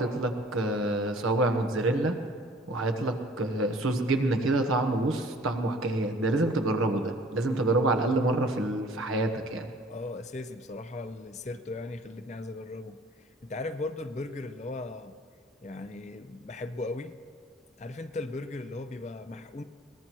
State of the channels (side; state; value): both; normal; correlation 0.52